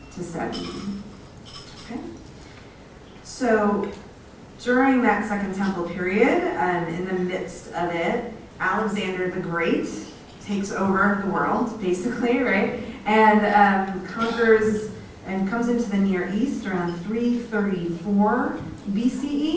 to 70. Okay. So during that Second Temple period, in the midst of it, Alexander the Great takes over the world, basically, right? And conquers and comes into the Near East around 334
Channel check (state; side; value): identical; both; correlation 1.00